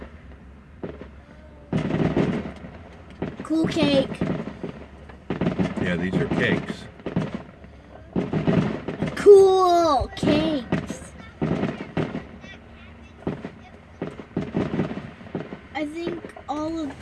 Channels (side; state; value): both; identical; correlation 1.00